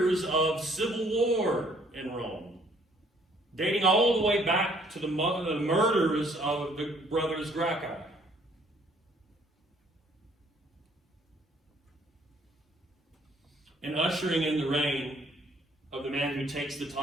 of civil war in Rome, dating all the way back to the murders of the brothers Greco. And ushering in the reign of the man who takes the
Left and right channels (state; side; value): normal; both; correlation 0.62